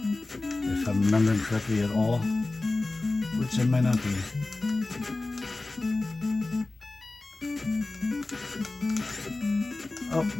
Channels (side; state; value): right; quieter; 3.1 dB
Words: If I'm remembering correctly at all, which I might not be. Oh,